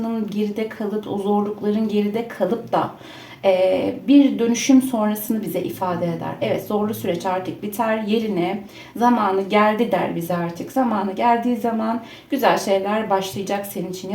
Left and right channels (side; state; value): both; identical; correlation 1.00